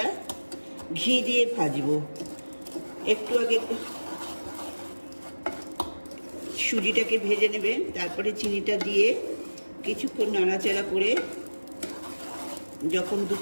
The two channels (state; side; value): inverted; both; correlation -1.00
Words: ঘি দিয়ে ভাজবো। একটু আগে সুজিটাকে ভেজে নেবেন, তারপরে চিনিটা দিয়ে কিছুক্ষণ নাড়াচাড়া করে যখন